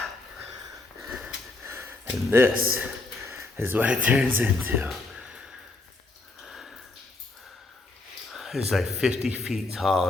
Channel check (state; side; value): quieter; right; 3.2 dB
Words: And this is what it turns into. It's like 50 feet tall